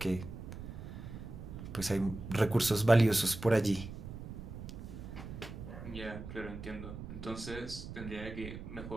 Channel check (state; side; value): noise; right; rumble, 10 dB below the sound